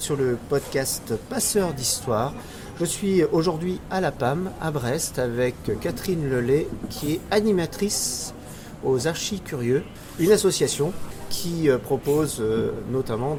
sur le podcast Passeurs d'Histoire. Je suis aujourd'hui à la PAM, à Brest, avec Catherine Lelay, qui est animatrice aux Archis Curieux, une association qui propose notamment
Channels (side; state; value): both; identical; correlation 1.00